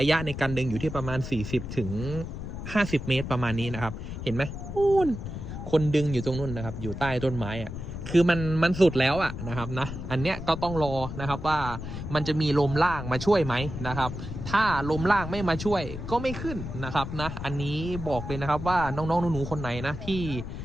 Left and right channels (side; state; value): left; noise; rumble, 8 dB below the sound